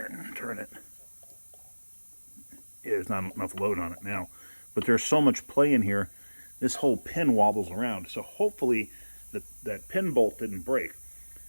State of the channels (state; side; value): inverted; both; correlation -1.00